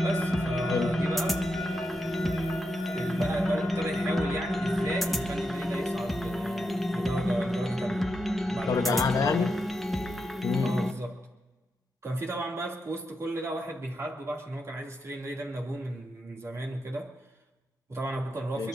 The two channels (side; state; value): both; normal; correlation 0.85